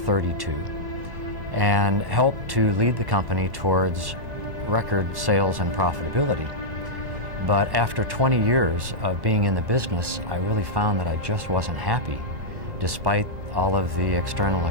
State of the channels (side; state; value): left; late; 1.9 ms